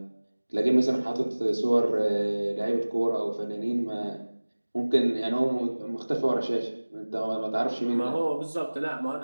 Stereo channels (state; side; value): inverted; both; correlation -1.00